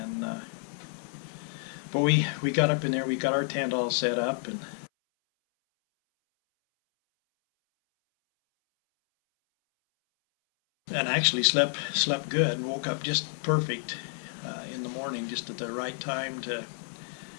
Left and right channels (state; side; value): silent; right; 58 dB below the other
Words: but we got up in there. We got our tent all set up, and actually slept good and woke up just perfect in the morning, just at the right time to